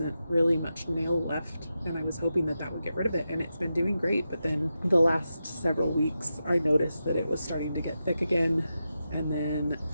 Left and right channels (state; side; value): inverted; both; correlation -0.89